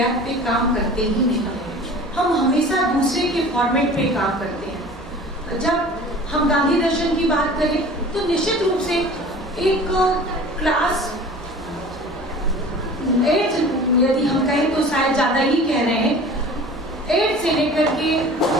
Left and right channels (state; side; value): normal; both; correlation 0.42